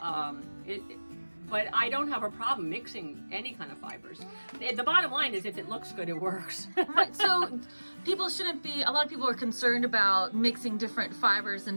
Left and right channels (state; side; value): inverted; both; correlation -1.00